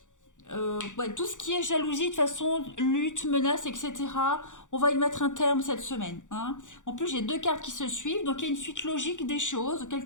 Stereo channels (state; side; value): late; right; 0.86 ms